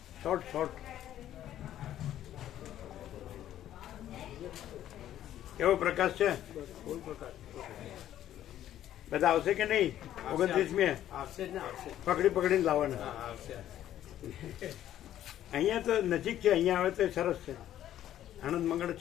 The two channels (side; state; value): right; quieter; 11.9 dB